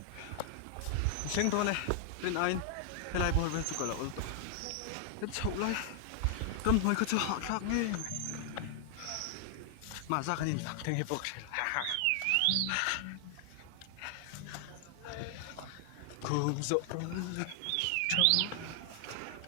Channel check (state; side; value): different; both; correlation 0.00